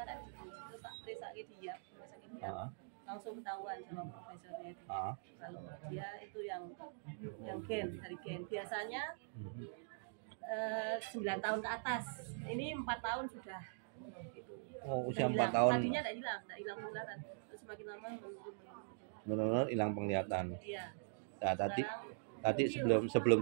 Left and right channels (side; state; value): left; silent; digital silence